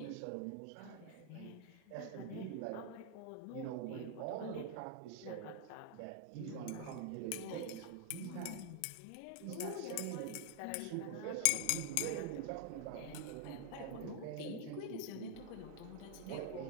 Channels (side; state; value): both; different; correlation 0.00